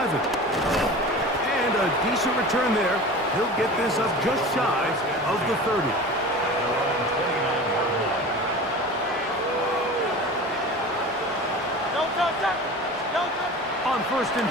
And a decent return there. He'll get this up just shy of the 30. On first and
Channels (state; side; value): normal; both; correlation 0.36